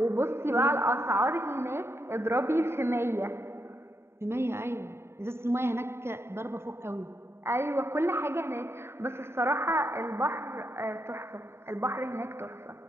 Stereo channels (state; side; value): late; left; 0.12 ms